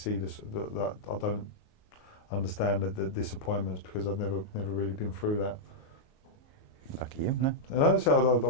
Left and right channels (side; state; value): right; late; 38 ms